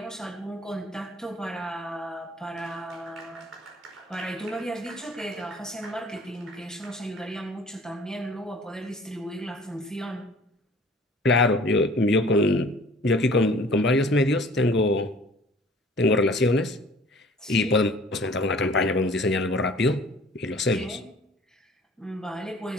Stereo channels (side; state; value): both; normal; correlation 0.50